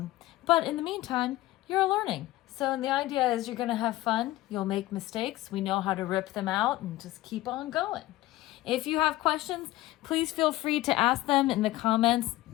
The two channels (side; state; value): right; quieter; 16.8 dB